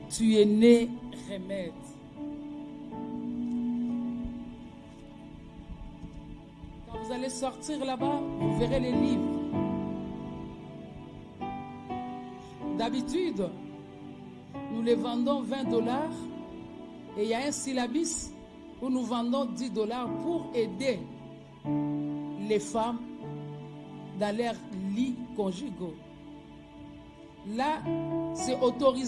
tu es né remède. Quand vous allez sortir là-bas, vous verrez les livres. D'habitude, nous les vendons $20 et il y a un syllabus où nous vendons $10 pour aider les femmes dans leurs lits conjugaux. Là, c'est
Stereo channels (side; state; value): both; identical; correlation 1.00